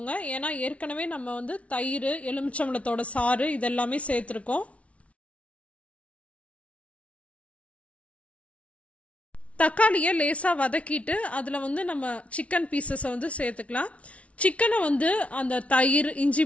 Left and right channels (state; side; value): late; right; 0.064 ms